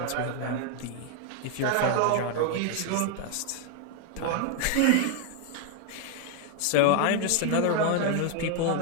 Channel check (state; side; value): different; both; correlation 0.00